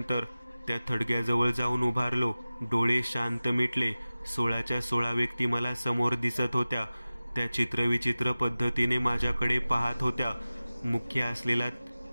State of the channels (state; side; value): inverted; both; correlation -0.97